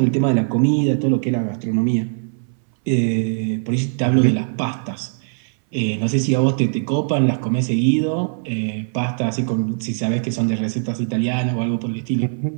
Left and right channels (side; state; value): left; silent; 61 dB below the other